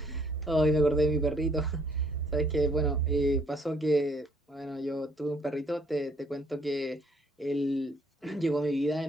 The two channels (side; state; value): both; normal; correlation 0.65